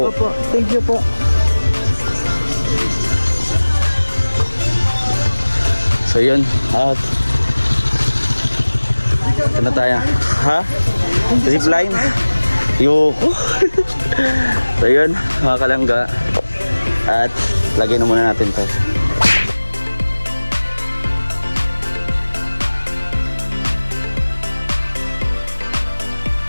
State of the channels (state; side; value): inverted; both; correlation -1.00